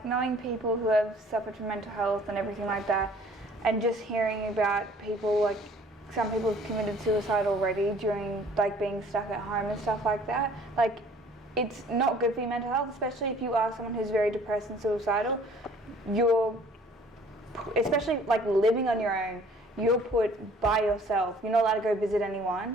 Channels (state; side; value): normal; both; correlation 0.54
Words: knowing people who have suffered from mental health and everything like that, and just hearing about people, some people have committed suicide already during, being stuck at home and stuff like that, it's not good for your mental health, especially if you are someone who's very depressed and suicidal. Especially living on your own, you're put by yourself. You're not allowed to go visit